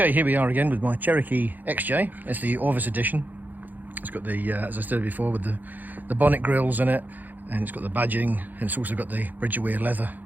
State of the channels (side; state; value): left; late; 0.085 ms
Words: here we are again with my Cherokee XJ. It's the ORVIS edition. It's got the, as I said before, with the bonnet grills in it, and it's got the badging, and it's also got the bridge-wear leather